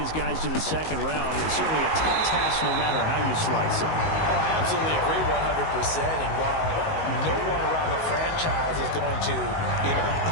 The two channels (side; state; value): right; late; 19 ms